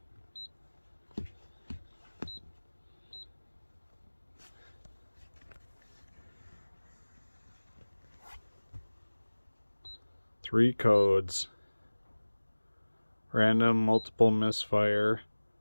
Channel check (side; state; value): both; inverted; correlation -1.00